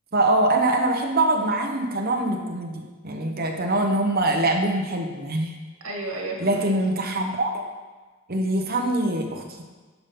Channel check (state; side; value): normal; both; correlation -0.05